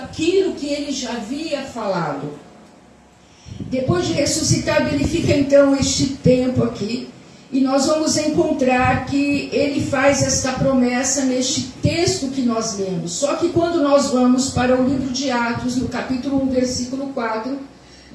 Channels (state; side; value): identical; both; correlation 1.00